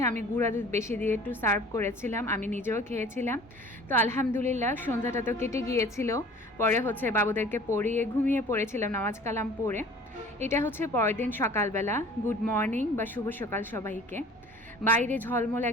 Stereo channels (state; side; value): normal; both; correlation 0.47